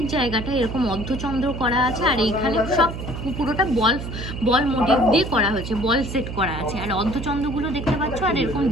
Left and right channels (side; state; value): right; noise; hum, 7 dB below the sound